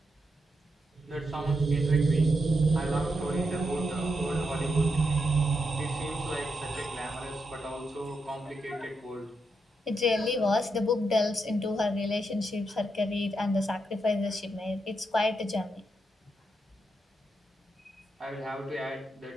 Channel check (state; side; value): normal; both; correlation 0.83